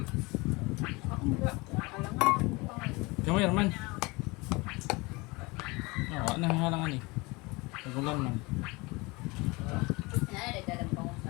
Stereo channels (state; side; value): quieter; right; 24.9 dB